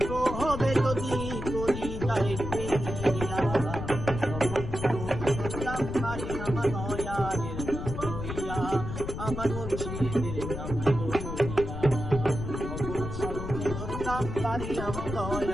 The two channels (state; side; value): noise; left; rumble, 6 dB below the sound